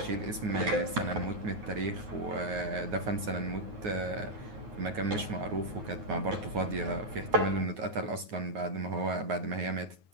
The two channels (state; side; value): late; left; 9.5 ms